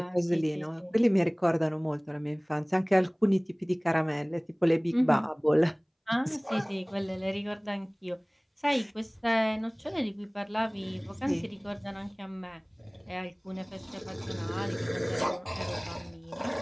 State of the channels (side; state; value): both; identical; correlation 1.00